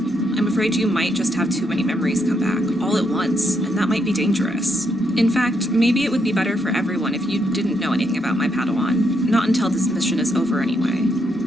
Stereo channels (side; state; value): both; normal; correlation 0.78